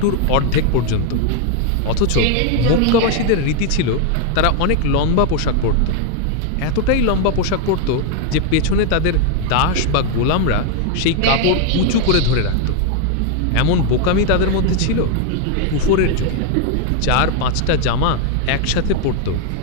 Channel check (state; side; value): different; both; correlation 0.01